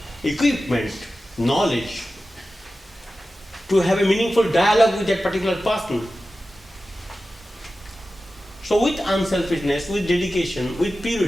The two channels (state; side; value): normal; both; correlation 0.94